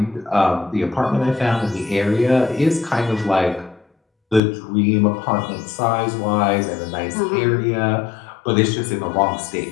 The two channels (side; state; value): right; drops out; at 4.4 s